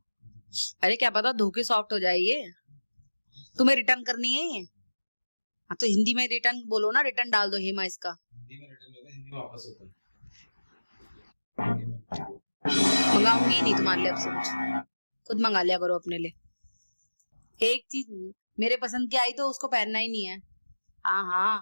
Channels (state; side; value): inverted; both; correlation -1.00